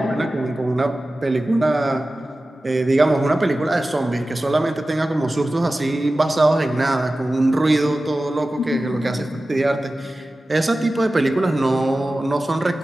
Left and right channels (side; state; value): both; normal; correlation 0.95